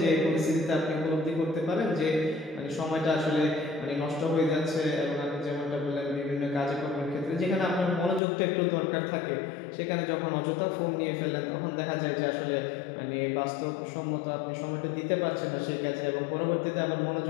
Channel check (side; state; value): right; drops out; at 8.2 s